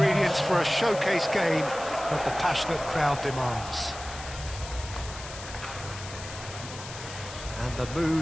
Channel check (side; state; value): left; noise; hiss, 12 dB below the sound